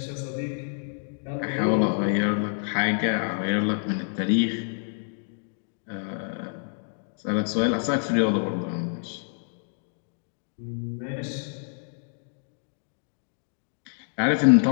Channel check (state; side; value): silent; right; digital silence